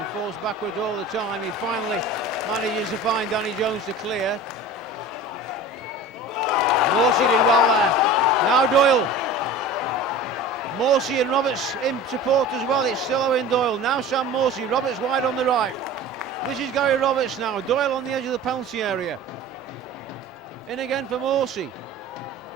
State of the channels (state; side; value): normal; both; correlation 0.37